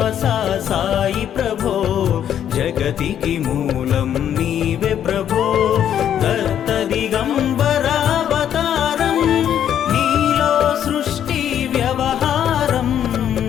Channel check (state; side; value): quieter; right; 9.8 dB